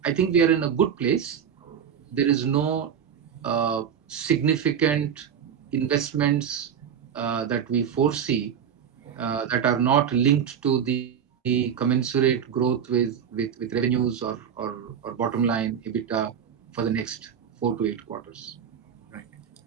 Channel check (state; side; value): quieter; left; 8.1 dB